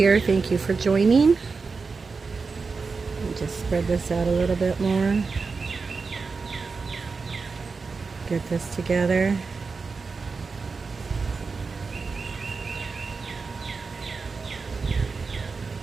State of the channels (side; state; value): left; quieter; 4.6 dB